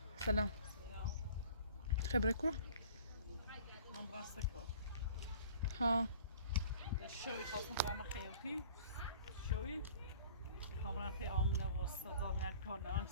سلام. خبرك كوره؟ من برستكو. ها. شوي خاصم برام خيوتي. شوي. خامرا في آمنة وصدا من كارنا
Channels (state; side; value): inverted; both; correlation -0.47